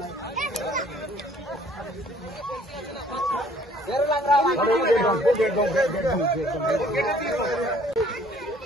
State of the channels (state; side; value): normal; both; correlation 0.59